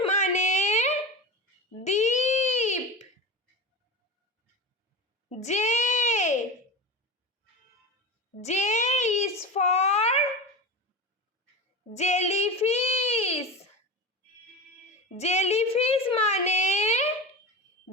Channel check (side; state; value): both; normal; correlation 0.25